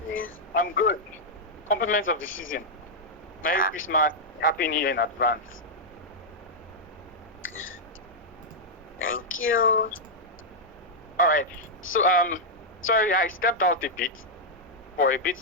I'm good. Compliments of the season. Merry Christmas. Happy New Year in advance. Thank you. All right. So, sorry, I stepped out for a bit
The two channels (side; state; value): both; normal; correlation -0.05